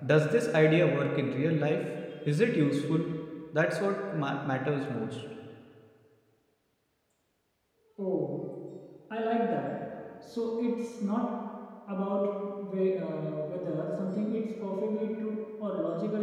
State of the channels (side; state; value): both; identical; correlation 1.00